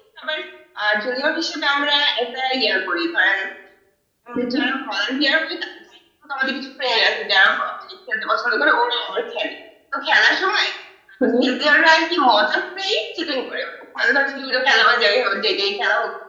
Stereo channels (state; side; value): identical; both; correlation 1.00